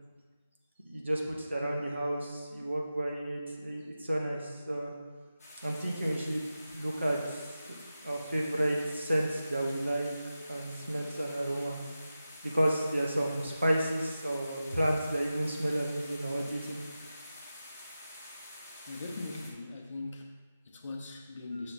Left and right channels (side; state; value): both; inverted; correlation -0.92